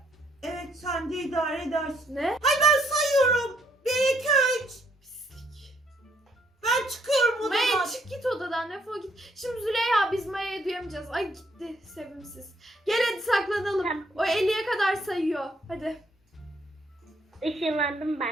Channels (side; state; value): both; normal; correlation 0.69